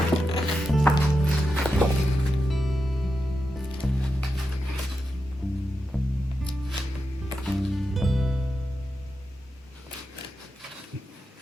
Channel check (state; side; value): normal; both; correlation 0.88